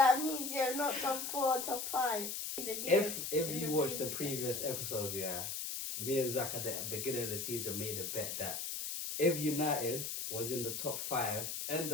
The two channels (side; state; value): left; noise; hiss, 4 dB below the sound